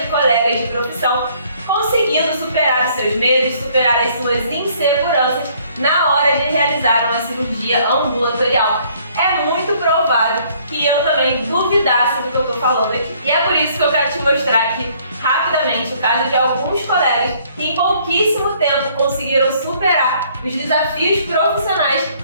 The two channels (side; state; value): both; inverted; correlation -0.62